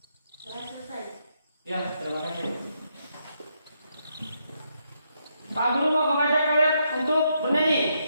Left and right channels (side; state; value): both; inverted; correlation -0.78